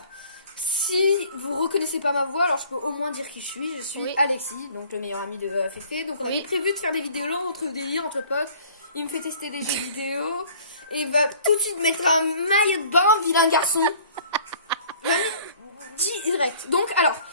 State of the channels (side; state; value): both; inverted; correlation -0.51